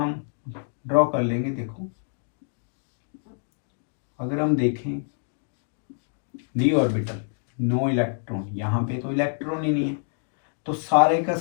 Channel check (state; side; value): silent; right; digital silence